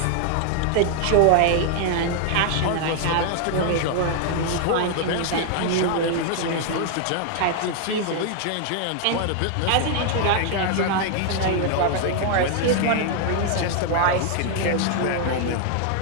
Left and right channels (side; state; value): both; different; correlation 0.00